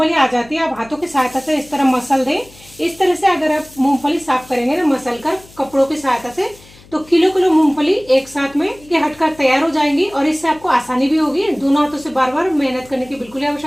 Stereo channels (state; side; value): noise; left; hum, 24 dB below the sound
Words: आ जाती है आप हाथों की सहायता से इस तरह मसल दे। इस तरह से अगर आप मूंगफली साफ करेंगे ना मसल कर कपड़ों की सहायता से तो किलो मूंगफली एक साथ में हटकर तैयार हो जाएंगी और इससे आपको आसानी भी होगी। दोनों हाथों से बार बार मेहनत करने की बिल्कुल